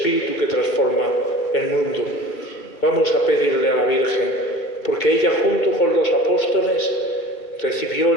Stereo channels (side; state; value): right; late; 2.6 ms